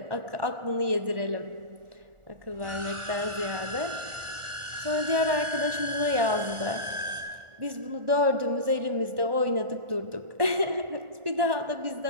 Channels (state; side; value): late; left; 1.4 ms